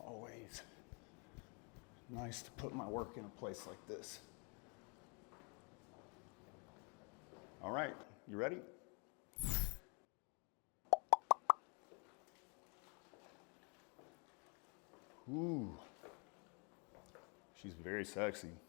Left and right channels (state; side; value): quieter; right; 34.7 dB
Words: nice to put my work in a place like this. All right, you ready? Ooh, she's very sexy.